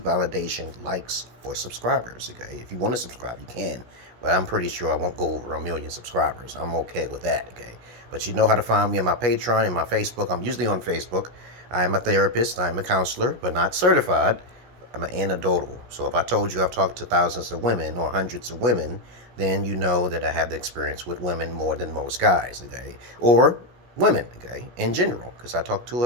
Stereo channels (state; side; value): late; left; 16 ms